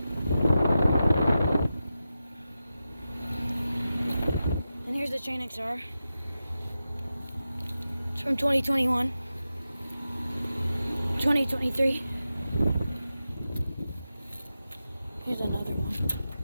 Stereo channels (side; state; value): both; inverted; correlation -0.92